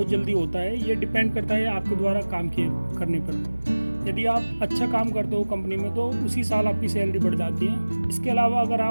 जल्दी होता है। ये डिपेंड करता है आपके द्वारा काम करने पर। यदि आप अच्छा काम करते हो कंपनी में तो उसी साल आपकी सैलरी बढ़ जाती है। इसके अलावा अगर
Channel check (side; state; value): both; inverted; correlation -1.00